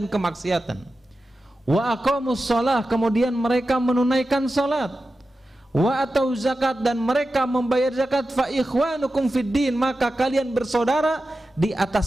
kemaksiatan, wa aqamus shalah, kemudian mereka menunaikan salat, wa atau zakat, dan mereka membayar zakat, fa ikhwanukum fid din, maka kalian bersaudara di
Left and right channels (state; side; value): normal; both; correlation 0.92